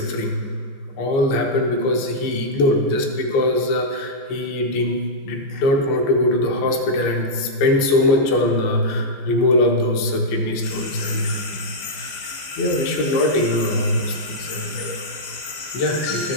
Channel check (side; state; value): right; late; 15 ms